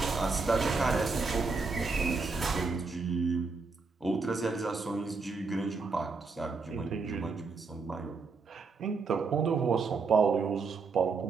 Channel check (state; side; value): quieter; left; 4.4 dB